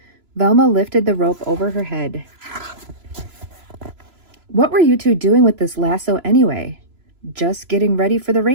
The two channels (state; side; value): late; left; 3.0 ms